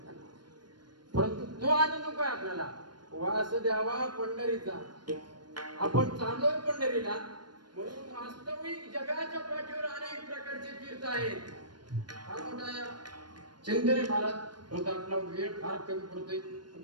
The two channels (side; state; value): left; late; 0.71 ms